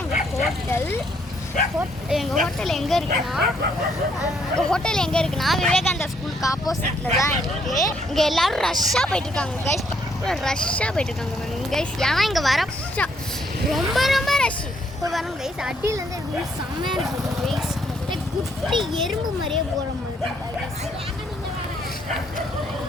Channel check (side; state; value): both; normal; correlation 0.70